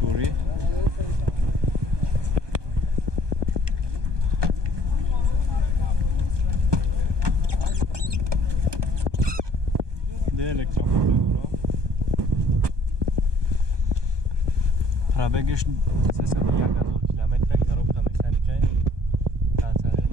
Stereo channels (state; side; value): late; left; 1.2 ms